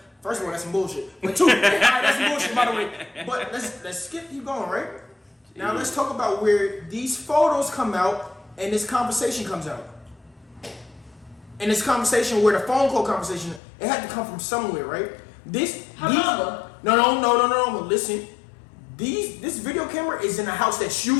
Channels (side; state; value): right; drops out; at 13.6 s